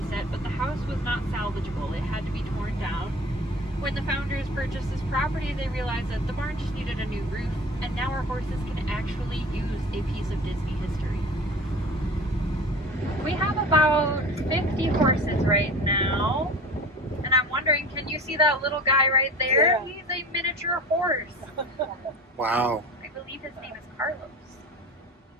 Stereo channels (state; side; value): normal; both; correlation 0.38